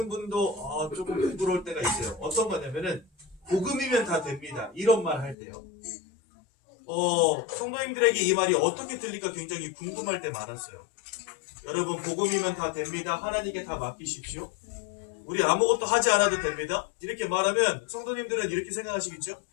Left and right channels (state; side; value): drops out; right; at 5.4 s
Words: 분도 조금 부끄러울 때가 있어요. 어떤 거냐면은 복음이면 다 됩니다. 이런 말 할 때요. 성도님들에게 이 말이 어떻게 들릴까 굉장히 궁금할 때 많았어요. 여러분, 복음이면 다 됩니다. 하나님께 다 맡기십시오. 우리 아무것도 하지 않아도 됩니다. 이렇게 말하면 성도님들은 이렇게 생각하시겠죠?